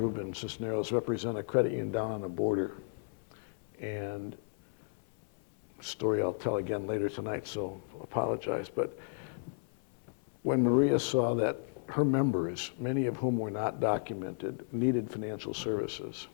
Cisneros represent a credit union down on the border, and story I'll tell again later tonight, so apologize, but when Maria saw that her members, many of whom were not documented, needed financial services,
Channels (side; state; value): right; silent; 55 dB below the other